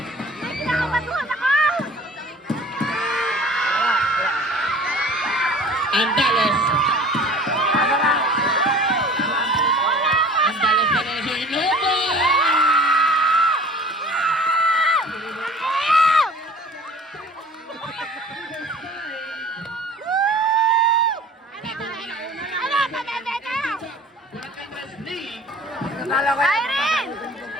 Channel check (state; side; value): normal; both; correlation 0.46